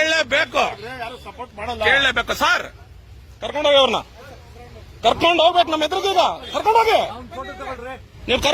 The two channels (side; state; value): both; identical; correlation 1.00